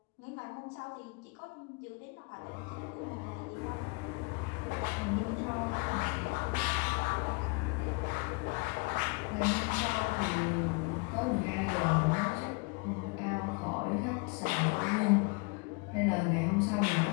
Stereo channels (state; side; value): quieter; right; 29.9 dB